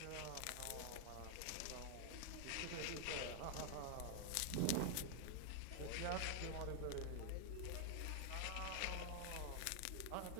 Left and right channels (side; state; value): both; different; correlation 0.00